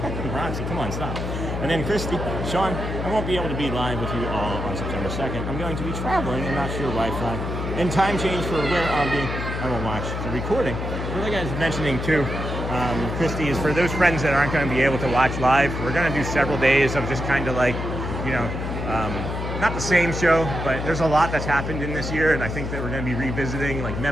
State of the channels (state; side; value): noise; left; hum, 4 dB below the sound